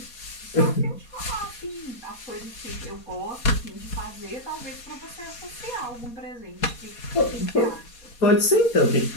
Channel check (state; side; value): late; right; 4.2 ms